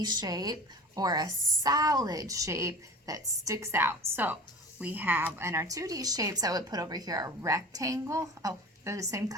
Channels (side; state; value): both; normal; correlation 0.38